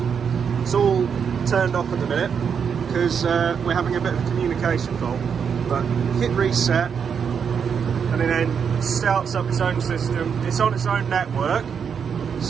It's all turned off at the minute because we're having a bit of a communication fault. But hit reset and it then starts up its own system. It's on its own network.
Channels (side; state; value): left; quieter; 6.9 dB